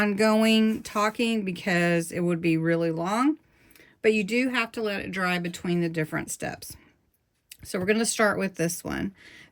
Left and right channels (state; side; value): identical; both; correlation 1.00